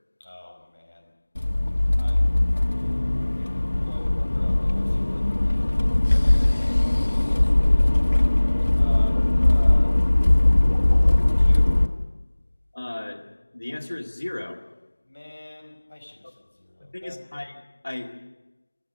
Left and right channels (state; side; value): inverted; both; correlation -1.00